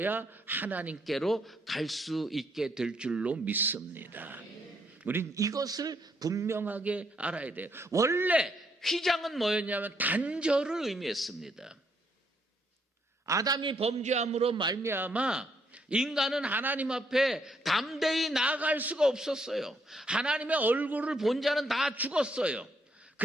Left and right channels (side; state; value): both; normal; correlation 0.73